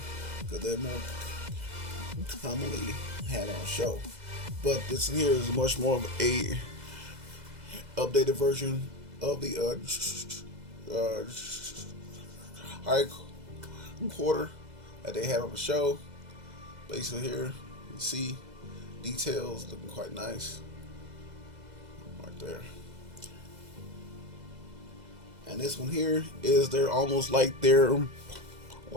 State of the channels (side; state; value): left; late; 2.0 ms